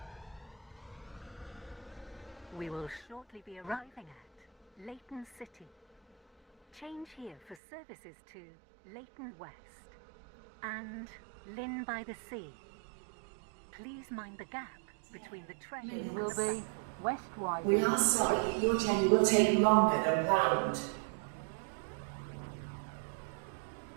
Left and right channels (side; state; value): left; drops out; at 7.6 s